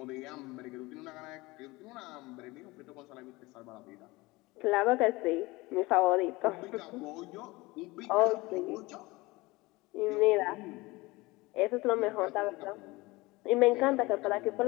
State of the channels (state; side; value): quieter; right; 21.9 dB